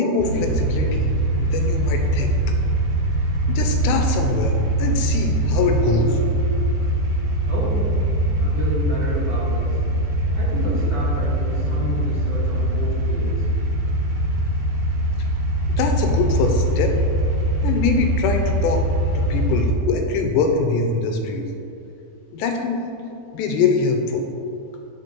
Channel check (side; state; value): right; late; 14 ms